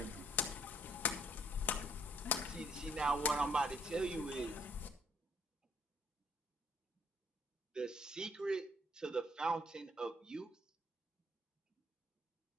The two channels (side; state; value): both; normal; correlation 0.64